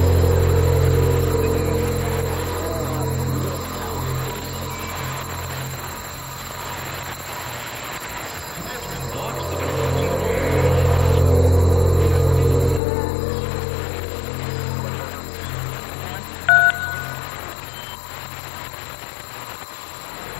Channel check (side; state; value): right; drops out; at 12.8 s